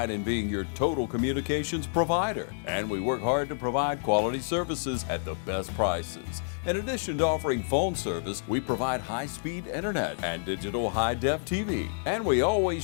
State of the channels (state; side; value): silent; right; digital silence